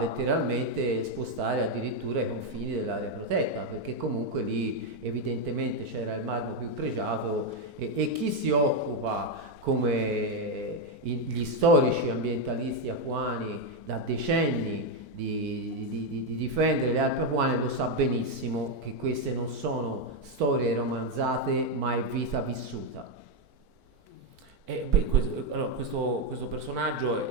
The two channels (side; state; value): left; late; 4.5 ms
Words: spostare addirittura i confini dell'area protetta, perché comunque lì evidentemente c'era il marmo più pregiato, e chi si occupa, come gli storici ambientalisti apuani da decenni, di difendere le Alpi Apuane, lo sa benissimo che queste non sono storie romanzate, ma è vita vissuta. Questo personaggio